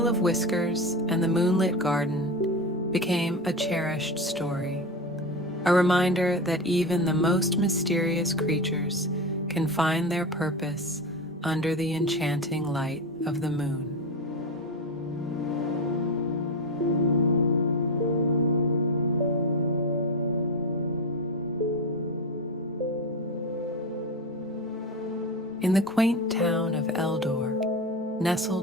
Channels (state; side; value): normal; both; correlation 0.20